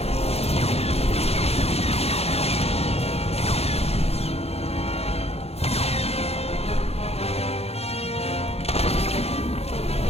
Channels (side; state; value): right; late; 0.30 ms